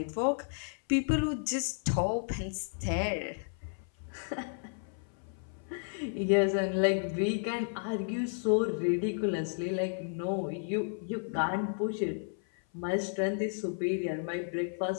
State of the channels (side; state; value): right; silent; 56 dB below the other